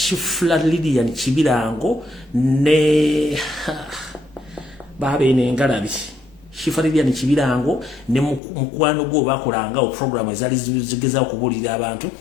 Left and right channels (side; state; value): right; drops out; at 8.4 s